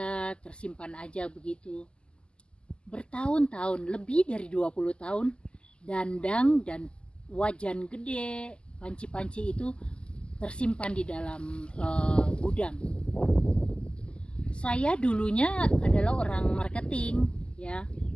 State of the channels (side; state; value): right; late; 0.050 ms